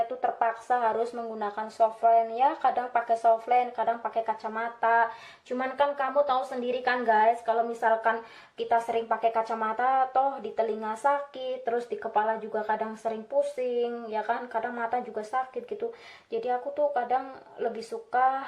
tuh terpaksa harus menggunakan softland ya. Kadang pakai softland, kadang pakai kacamata. Cuman kan kamu tahu sendiri kan guys, kalau misalkan kita sering pakai kacamata, toh di telinga sakit, terus di kepala juga kadang sering pusing, ya kan? Kadang mata juga sakit gitu. Jadi aku tuh kadang lebih suka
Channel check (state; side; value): identical; both; correlation 1.00